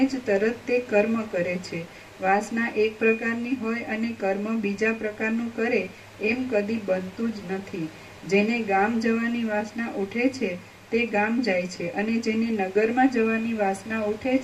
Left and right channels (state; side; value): identical; both; correlation 1.00